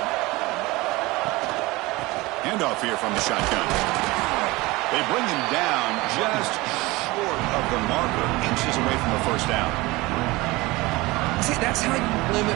Handoff here from the shotgun. They bring him down just short of the marker, inches away from the first down. See, that's how you limit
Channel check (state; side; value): quieter; left; 21.6 dB